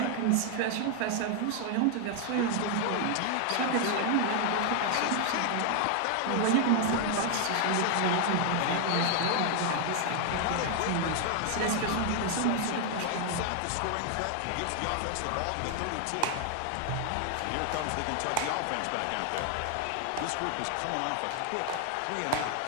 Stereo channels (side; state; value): both; different; correlation 0.00